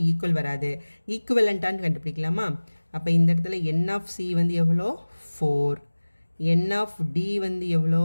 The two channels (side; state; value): both; inverted; correlation -1.00